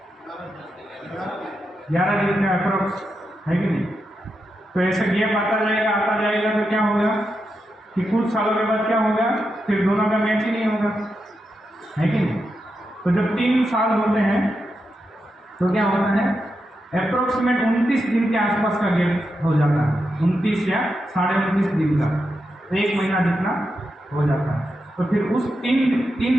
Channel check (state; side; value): normal; both; correlation 0.87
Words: 11 दिन का अप्रोक्स, है कि नहीं? तो ऐसा गैप आता जाएगा तो क्या होगा कि कुछ सालों के बाद क्या होगा, फिर दोनों का मैच ही नहीं होगा, है कि नहीं? तो जब 3 साल होते हैं तो क्या होता है, अप्रोक्सीमेट 29 दिन के आसपास का गैप हो जाता है, 29 या 29.5 दिन का, तो 1 महीना जितना हो जाता है। तो फिर उस 3